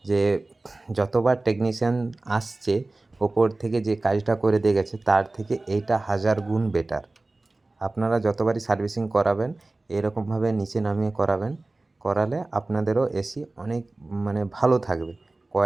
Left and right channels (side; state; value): left; quieter; 3.0 dB